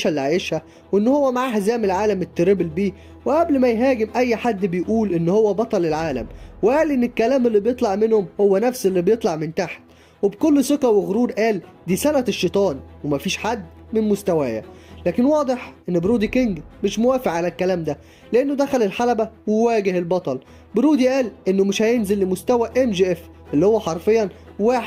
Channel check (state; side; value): identical; both; correlation 1.00